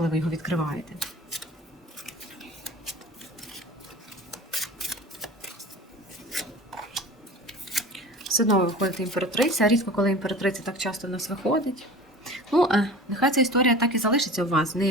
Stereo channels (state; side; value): normal; both; correlation 0.38